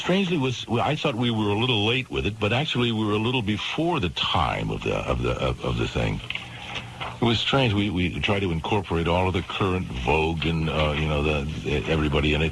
was. I thought we were a little late with it, but actually we were a little before the time of the thing. It was strange. We tried to incorporate all of the current vogue and everybody in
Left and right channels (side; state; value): both; identical; correlation 1.00